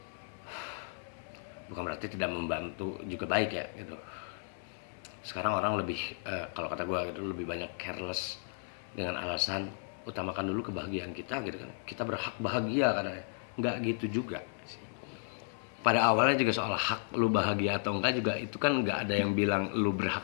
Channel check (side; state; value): right; silent; 55 dB below the other